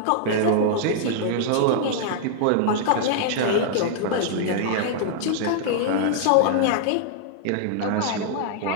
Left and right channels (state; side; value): different; both; correlation -0.01